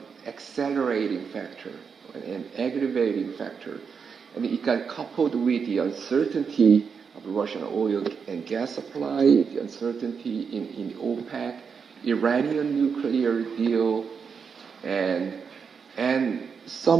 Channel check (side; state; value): left; quieter; 6.1 dB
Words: accelerating factor, an aggravating factor. And it got coupled with the uncertainty of Russian oil and gas supply, the uncertainty in OPEC, Iranian nuclear deal, and